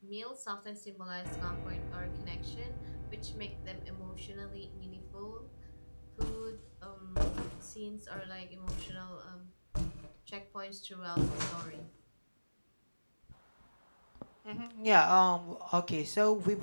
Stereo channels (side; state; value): both; inverted; correlation -1.00